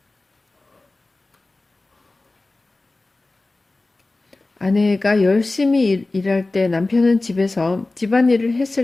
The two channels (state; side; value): quieter; right; 3.1 dB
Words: 아내가 열심히 일할 때 남편은 집에서 집안일을